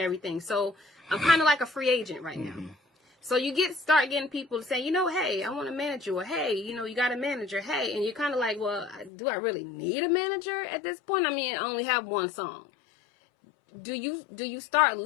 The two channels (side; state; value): right; drops out; at 9.1 s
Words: So I'm kind of like a free agent right now. So you start getting people saying, you know, hey, I want a manager, or hey, you know, you got a manager, hey, and you're kind of like, well, do I really need a manager at this point? I mean, I only have one song. Do you start